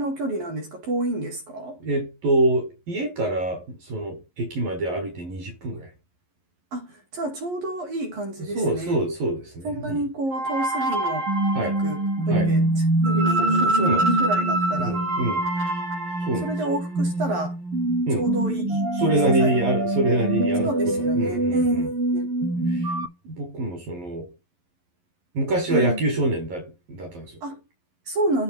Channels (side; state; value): left; late; 11 ms